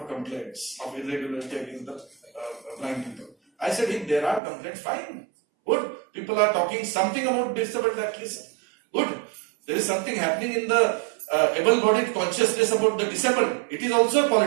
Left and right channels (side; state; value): left; drops out; at 4.4 s